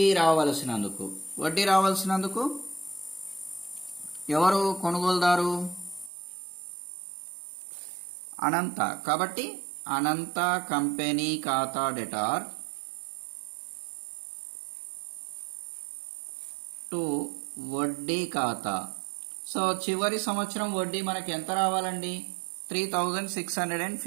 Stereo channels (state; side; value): drops out; left; at 6.1 s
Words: రావాల్సినందుకు. వడ్డీ రావాల్సినందుకు ఎవరు కొనుగోలుదారు? అనంత. కాబట్టి అనంత కంపెనీ ఖాతా డెటార్ టు వడ్డీ ఖాతా. సో చివరి సంవత్సరం వడ్డీ మనకి ఎంత రావాలండి?